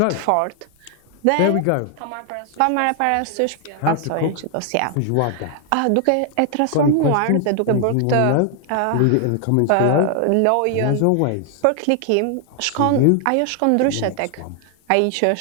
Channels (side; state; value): both; different; correlation 0.00